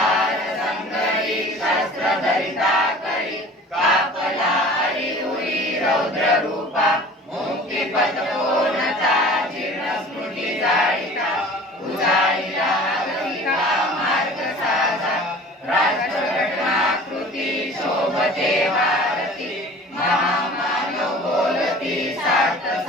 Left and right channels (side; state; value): both; normal; correlation 0.44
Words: संगरी शस्त्रधरिता करी कापला हरि